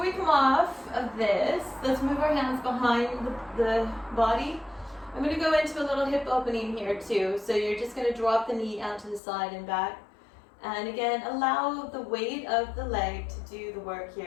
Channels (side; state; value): right; drops out; at 9.2 s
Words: we come off of this, let's move our hands behind the body. I'm going to go into a little hip opening here too. So you're just going to drop the knee out to the side and back. And again, allow the weight of the leg to do the work